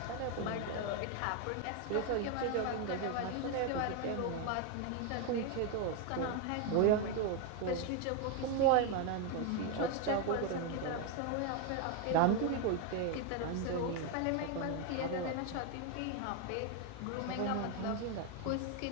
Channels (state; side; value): different; both; correlation 0.01